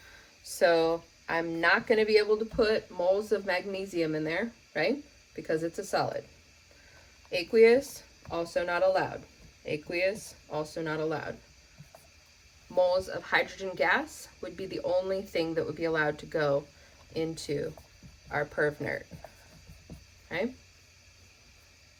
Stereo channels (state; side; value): identical; both; correlation 1.00